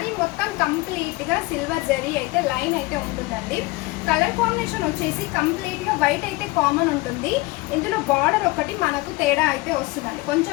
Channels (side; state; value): right; quieter; 22.0 dB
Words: మొత్తం కంప్లీట్గా సిల్వర్ జరీ అయితే లైన్ అయితే ఉంటుందండి. కలర్ కాంబినేషన్ వచ్చేసి కంప్లీట్గా వైట్ అయితే కామన్ ఉంటుంది. ఇందులో బార్డర్ ఒకటి మనకు తేడా అయితే వస్తుందండి,